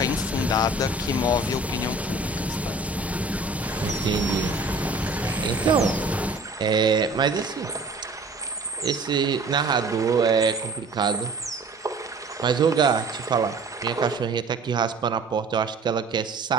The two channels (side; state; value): left; quieter; 3.1 dB